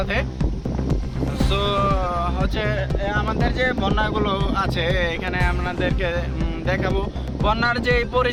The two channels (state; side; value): identical; both; correlation 1.00